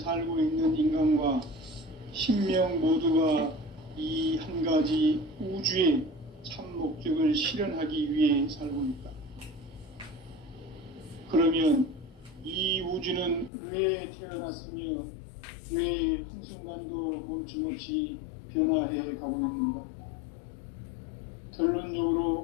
있는 인간과 신명 모두가 이 한 가지 우주의 참 목적을 실현하기 위해 살고 있다. 그러면 이 우주는 왜 태어났으며 왜 한순간도 멈춤없이 변화해 가고 있는가?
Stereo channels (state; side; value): drops out; right; at 13.5 s